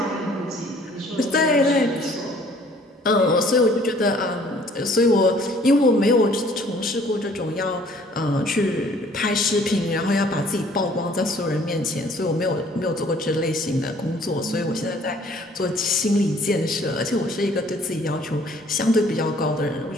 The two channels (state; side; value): normal; both; correlation 0.57